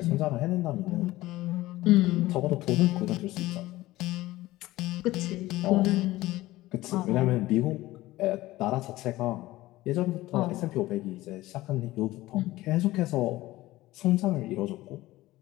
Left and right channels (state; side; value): quieter; right; 17.5 dB